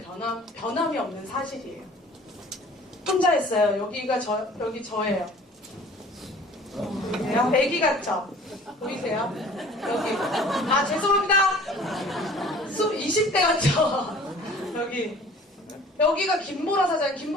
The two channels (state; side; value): normal; both; correlation 0.49